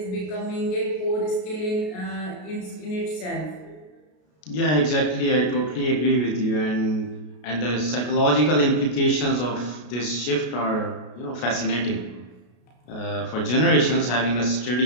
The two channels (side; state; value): right; late; 33 ms